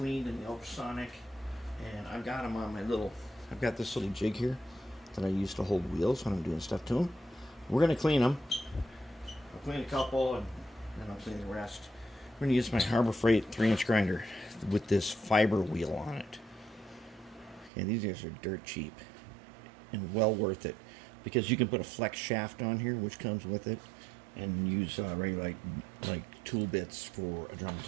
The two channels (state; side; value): drops out; left; at 17.7 s